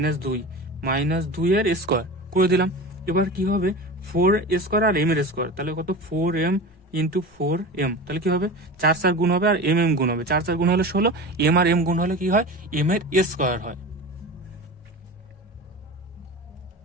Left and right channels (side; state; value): both; normal; correlation 0.30